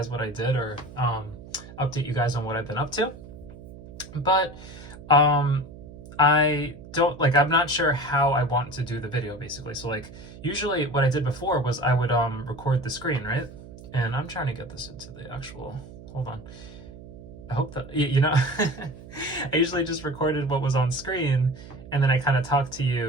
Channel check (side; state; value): right; noise; hum, 16 dB below the sound